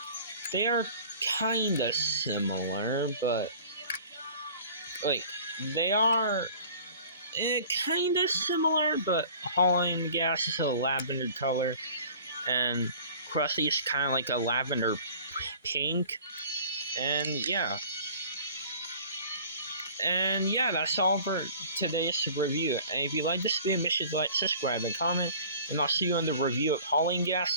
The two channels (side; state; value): both; inverted; correlation -0.46